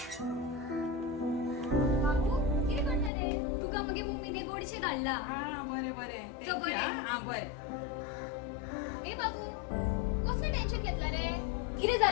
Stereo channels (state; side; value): drops out; right; at 3.1 s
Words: बाबू किती करतले तुका मगे मम्मीने गोडशे धाडला बरे बरे चल बरे. बरे ए बाबू कसले टेन्शन घेतला रे किती